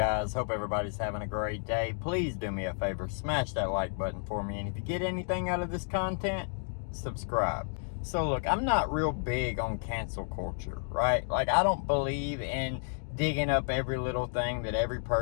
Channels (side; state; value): right; silent; digital silence